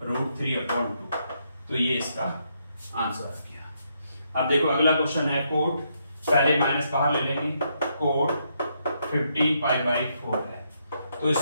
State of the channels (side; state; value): both; inverted; correlation -0.77